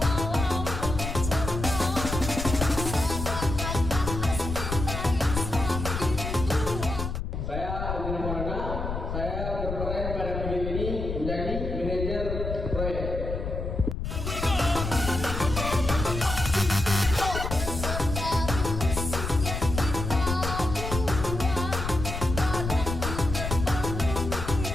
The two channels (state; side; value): noise; left; rumble, 4 dB below the sound